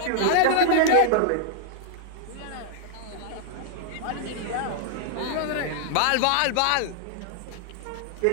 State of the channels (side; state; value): both; different; correlation 0.00